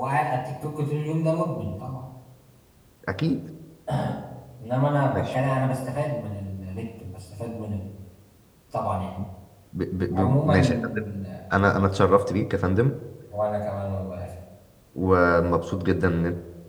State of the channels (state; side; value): identical; both; correlation 1.00